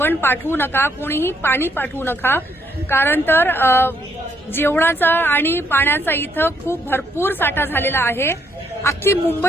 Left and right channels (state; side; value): normal; both; correlation 0.72